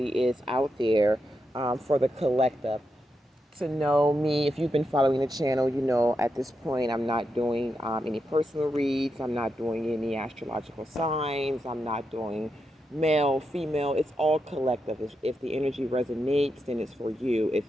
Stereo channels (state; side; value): normal; both; correlation 0.85